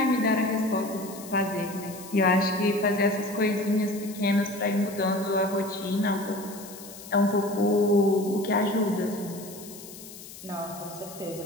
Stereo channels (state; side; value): noise; left; hiss, 16 dB below the sound